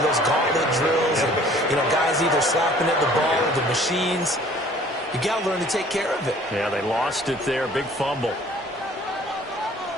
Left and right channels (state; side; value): normal; both; correlation 0.53